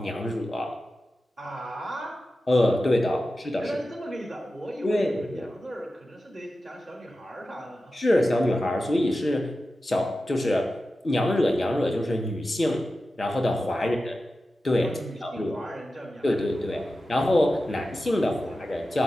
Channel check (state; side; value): normal; both; correlation 0.93